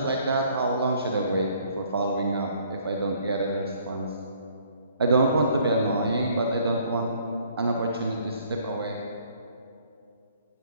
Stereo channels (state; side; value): inverted; both; correlation -0.61